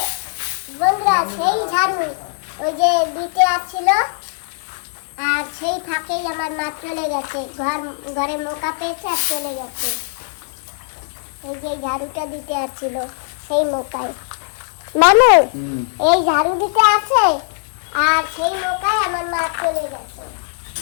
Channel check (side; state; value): right; silent; digital silence